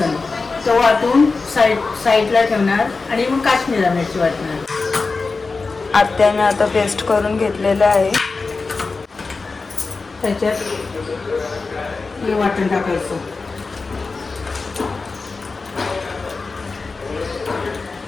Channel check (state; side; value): quieter; right; 4.1 dB